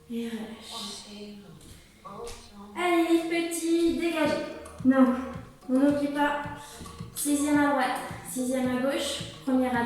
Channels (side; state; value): both; identical; correlation 1.00